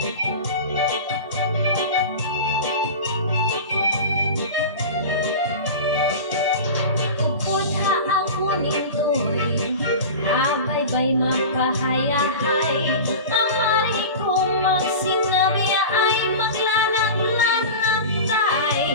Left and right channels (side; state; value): both; inverted; correlation -0.30